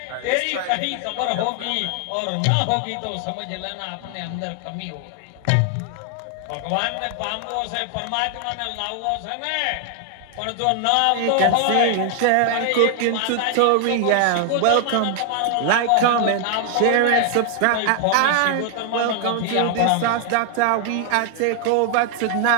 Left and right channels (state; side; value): different; both; correlation 0.00